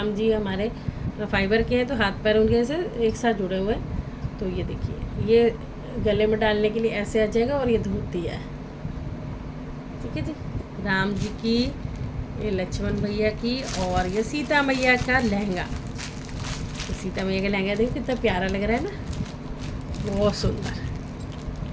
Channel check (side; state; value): both; identical; correlation 1.00